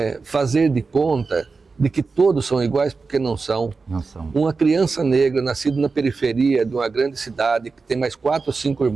fazer de conta de que todos são iguais, porque não são. Não são. Uma criança negra, nascida na periferia de uma grande cidade, que tem mais 4 ou 5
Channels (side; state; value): left; quieter; 4.4 dB